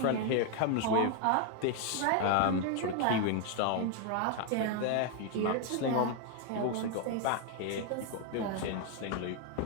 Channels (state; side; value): different; both; correlation 0.01